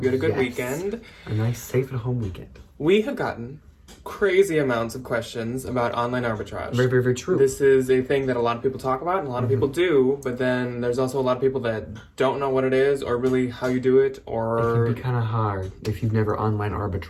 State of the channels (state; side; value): identical; both; correlation 1.00